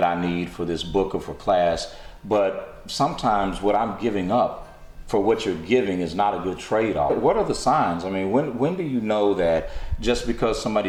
I need for this book or for class, but sometimes what I'm giving up for what you're giving is not a good trade-off. What are the signs? I mean, when do you know that just because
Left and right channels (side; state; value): both; identical; correlation 1.00